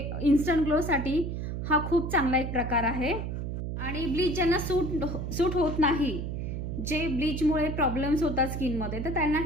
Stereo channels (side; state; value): right; noise; hum, 4 dB below the sound